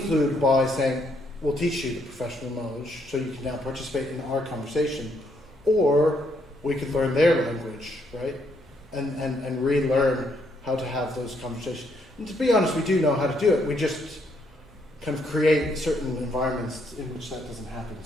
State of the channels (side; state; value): both; normal; correlation 0.73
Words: by saying, we'll teach you the professional knowledge so you can now participate in our conversation. Or we could learn their language, right? And relearn how to have those conversations. And to be honest, we do know how to do it. We just kind of create certain environments in which that doesn't happen